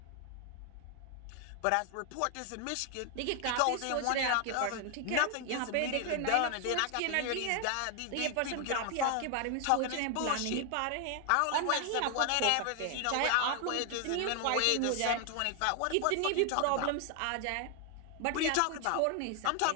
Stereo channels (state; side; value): different; both; correlation 0.00